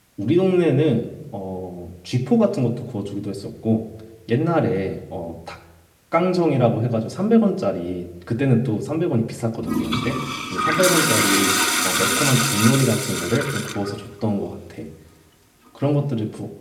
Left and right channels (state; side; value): identical; both; correlation 1.00